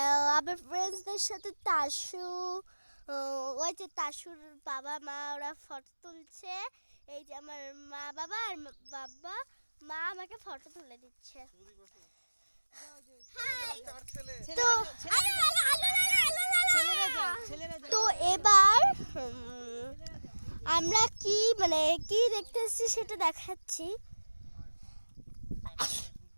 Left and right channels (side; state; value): both; inverted; correlation -1.00